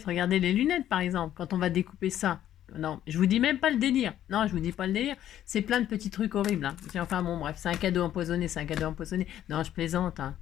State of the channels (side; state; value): right; quieter; 11.6 dB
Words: regardez les lunettes par exemple, quand on va découper ça. Non, je vous dis même pas le délire. Non, je vous dis pas le délire. C'est plein de petits trucs horribles. Hein. Enfin bon, bref, c'est un cadeau empoisonné, Non, je plaisante. Hein.